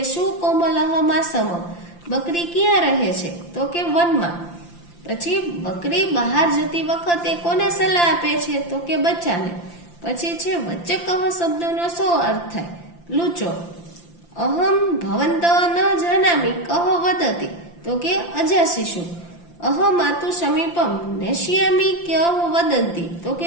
શું કોમલહ માસમ. બકરી ક્યાં રહે છે? તો કે વનમાં. પછી બકરી બહાર જતી વખતે કોને સલાહ આપે છે? તો કે બચ્ચાને. પછી છે વચ્ચે કહ શબ્દનો શું અર્થ થાય? લૂચો. અહમ ભવંત ન જાનામી કહ વદતી. તો કે અજા શિશુ. અહમાતુ સમીપમ નેશ્યામી કહ વદંતી. તો કે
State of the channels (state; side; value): late; right; 5.8 ms